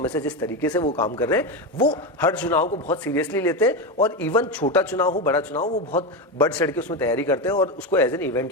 से जिस तरीके से वो काम कर रहे हैं, वो हर चुनाव को बहुत सीरियसली लेते हैं, और इवन छोटा चुनाव हो बड़ा चुनाव, वो बहुत बढ़ चढ़ के उसमें तैयारी करते हैं और उसको एज एन इवेंट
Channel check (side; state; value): both; normal; correlation 0.14